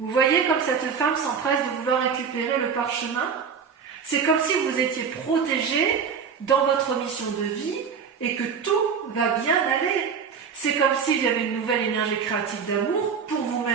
voyez comme cette femme s'empresse de vouloir récupérer le parchemin? C'est comme si vous étiez protégé dans votre mission de vie et que tout va bien aller. C'est comme s'il y avait une nouvelle énergie créative d'amour pour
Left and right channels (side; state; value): left; quieter; 6.4 dB